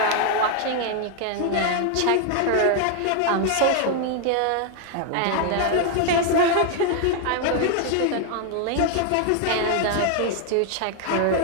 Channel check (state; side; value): different; both; correlation 0.01